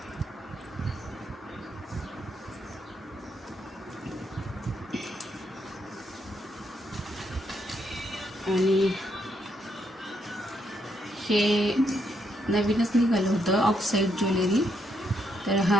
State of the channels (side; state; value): both; normal; correlation 0.76